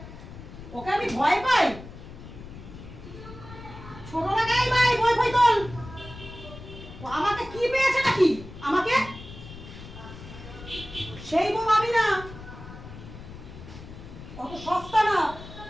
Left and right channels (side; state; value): left; noise; rumble, 14 dB below the sound